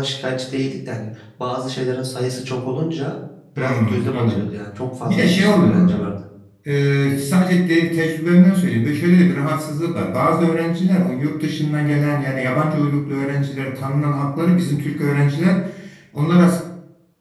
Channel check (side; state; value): both; identical; correlation 1.00